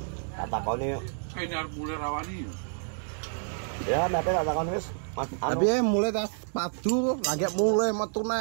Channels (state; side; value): silent; left; digital silence